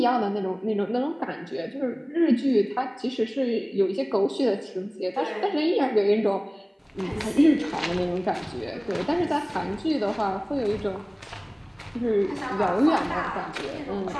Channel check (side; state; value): both; identical; correlation 1.00